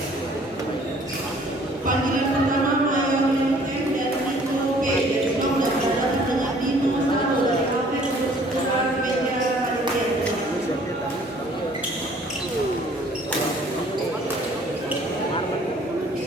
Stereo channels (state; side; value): normal; both; correlation 0.56